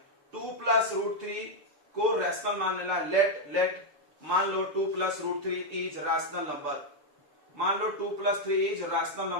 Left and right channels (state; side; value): late; left; 6.9 ms